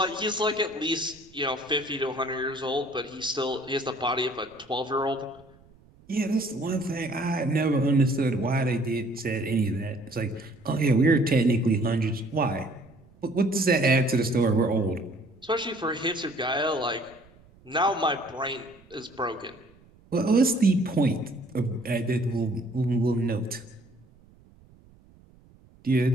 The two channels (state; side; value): noise; right; rumble, 27 dB below the sound